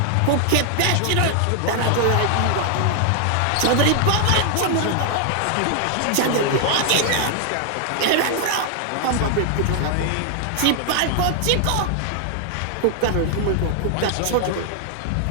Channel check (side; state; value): both; different; correlation 0.00